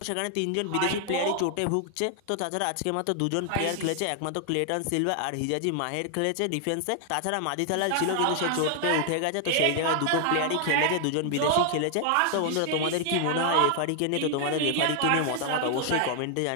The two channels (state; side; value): different; both; correlation 0.00